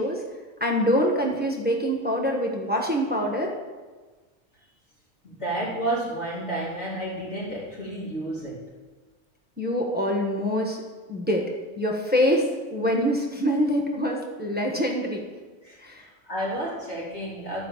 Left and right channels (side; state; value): both; normal; correlation 0.32